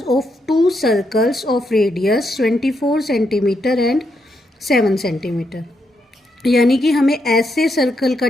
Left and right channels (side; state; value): both; normal; correlation 0.80